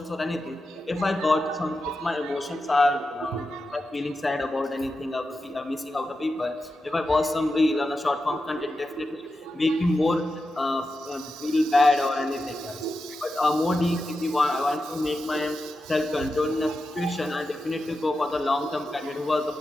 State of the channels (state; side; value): normal; both; correlation 0.90